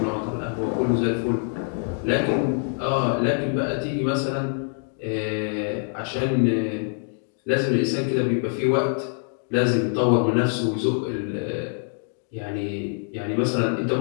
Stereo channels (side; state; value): right; silent; 55 dB below the other